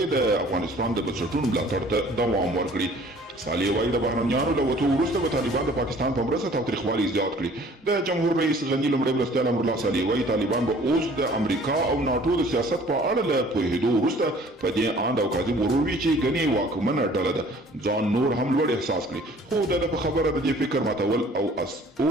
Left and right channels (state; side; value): normal; both; correlation 0.53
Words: د افغانستان د بنسټونو ملاتړ ته دوام ورکړي. صالح وایي د بهرنیانو له وتو وروسته به طالبان د پاکستان په مرسته تاوتریخوالي زیات کړي. د جمهور رئیس غني لومړی مرستیال امرالله صالح وایي طالبان به اوس د امریکا او ناټو د سیاست په اړه له پوهېدو وروسته په دې اند او کاذب غرور وي چې ګنې واکمنه ډله ده ځان نور هم لوړ احساس کړي. خو د په خبره د دې فکر ماتول او